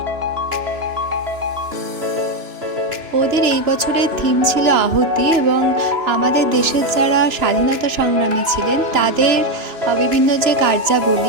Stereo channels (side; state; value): left; late; 2.9 ms